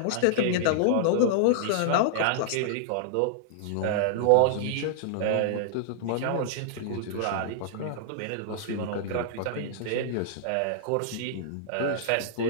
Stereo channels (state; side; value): different; both; correlation -0.01